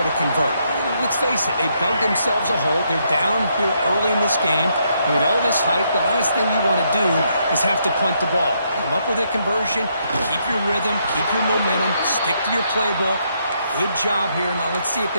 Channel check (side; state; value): both; inverted; correlation -0.75